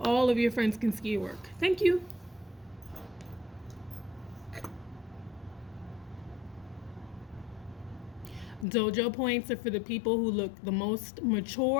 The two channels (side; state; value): right; drops out; at 8.7 s